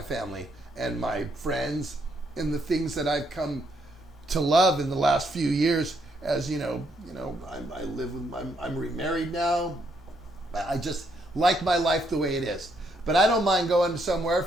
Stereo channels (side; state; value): both; normal; correlation 0.73